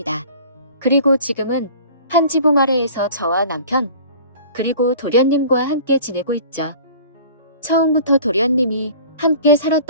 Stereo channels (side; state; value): both; inverted; correlation -0.44